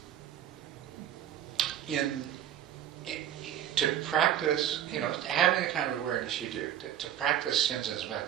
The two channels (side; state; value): left; quieter; 10.7 dB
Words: to practice, having the kind of awareness you do, to practice Shinzen's